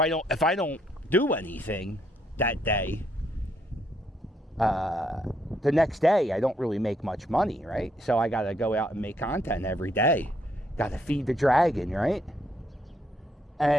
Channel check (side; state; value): both; normal; correlation 0.73